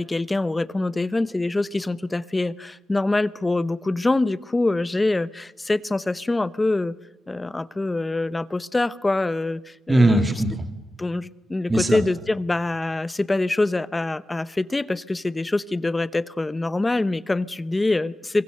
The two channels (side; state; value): both; normal; correlation 0.96